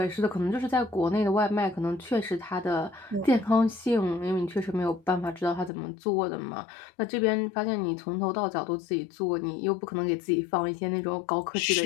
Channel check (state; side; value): drops out; right; at 5.7 s